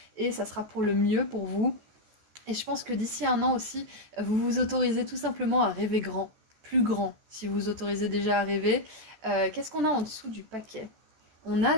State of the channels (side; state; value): left; late; 14 ms